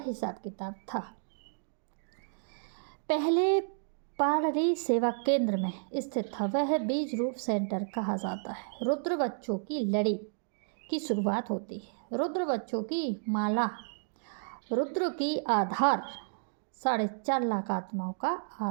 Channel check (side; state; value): left; silent; digital silence